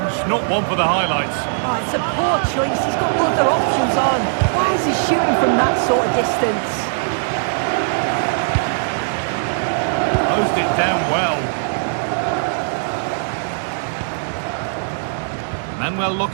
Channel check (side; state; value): left; silent; digital silence